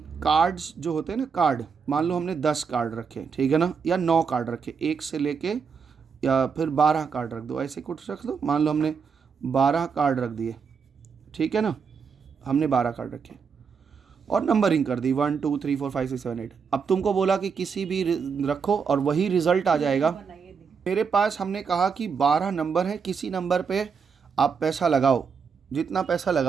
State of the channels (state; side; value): quieter; left; 6.0 dB